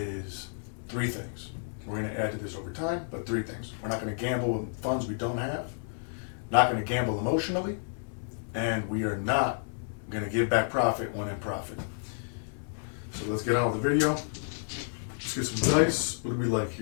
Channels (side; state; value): right; silent; digital silence